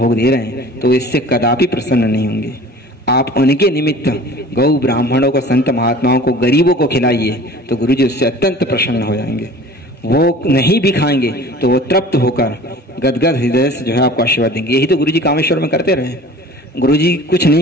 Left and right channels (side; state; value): both; normal; correlation 0.44